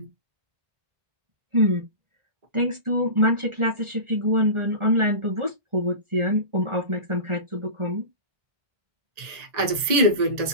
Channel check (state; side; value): late; left; 1.8 ms